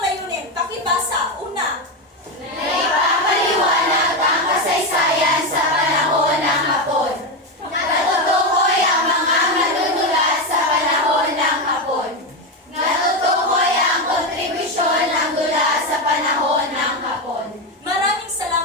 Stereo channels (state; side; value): normal; both; correlation 0.11